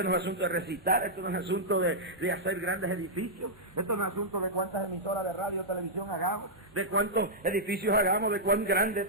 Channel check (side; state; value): both; normal; correlation -0.09